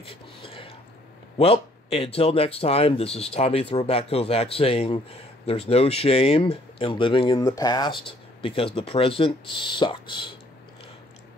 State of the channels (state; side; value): normal; both; correlation 0.62